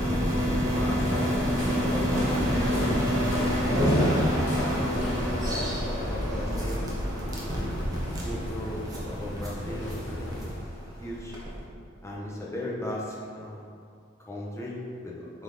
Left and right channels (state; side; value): normal; both; correlation 0.68